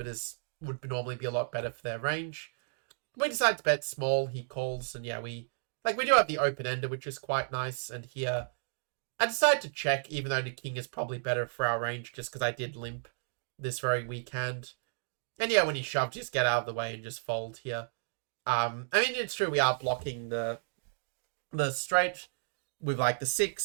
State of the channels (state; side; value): silent; left; digital silence